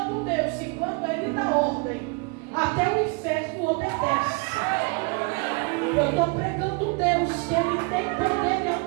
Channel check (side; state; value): left; quieter; 31.1 dB